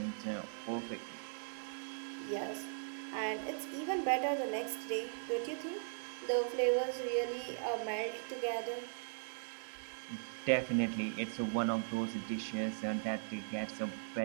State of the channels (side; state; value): left; silent; digital silence